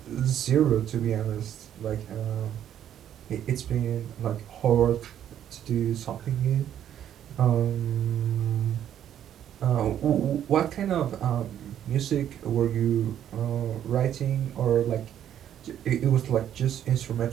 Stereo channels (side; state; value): left; quieter; 10.4 dB